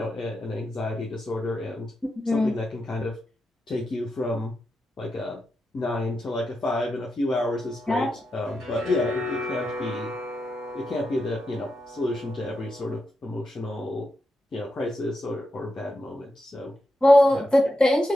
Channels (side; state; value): both; normal; correlation 0.87